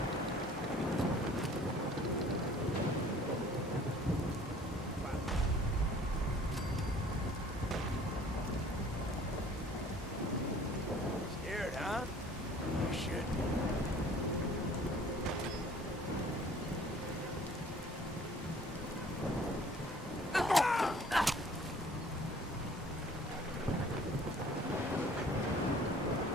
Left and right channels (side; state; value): both; normal; correlation 0.52